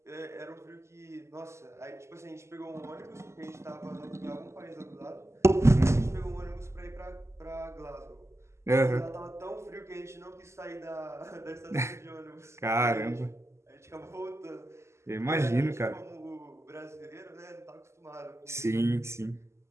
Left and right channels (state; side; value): late; left; 0.13 ms